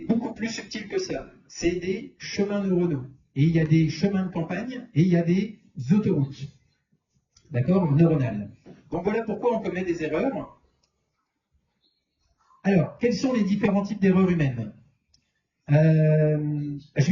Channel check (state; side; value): identical; both; correlation 1.00